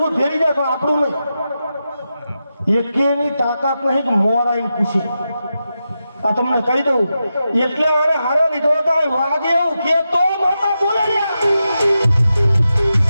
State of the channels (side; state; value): both; inverted; correlation -0.89